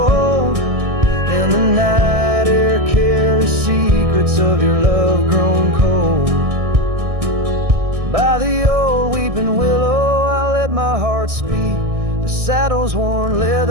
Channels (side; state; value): left; late; 1.6 ms